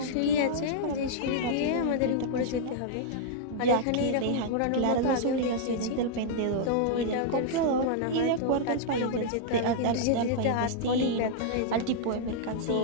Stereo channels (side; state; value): both; different; correlation -0.01